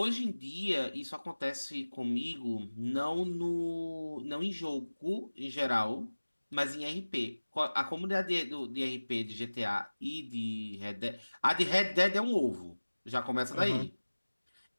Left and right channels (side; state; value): both; inverted; correlation -1.00